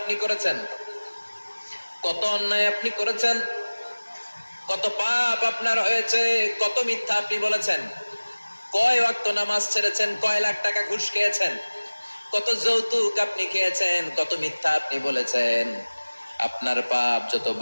করেছেন, কত অন্যায় আপনি করেছেন, কত পাপ আপনার হয়েছে, কত মিথ্যা আপনি বলেছেন, কয় ওয়াক্ত নামাজ ছেড়েছেন, কয় লাখ টাকা ঘুষ খেয়েছেন, কত যৌতুক আপনি খেয়েছেন, কত মিথ্যা আপনি বলেছেন। আপনার পাপ যত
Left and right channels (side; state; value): both; inverted; correlation -1.00